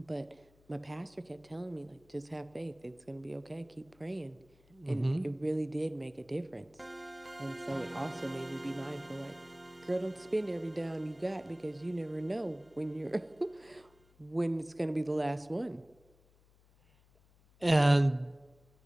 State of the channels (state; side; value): noise; left; hum, 29 dB below the sound